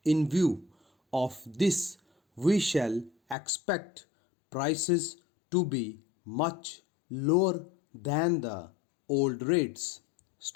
In view of this, we shall expect prices to be much lower than the old rates.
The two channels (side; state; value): right; drops out; at 3.4 s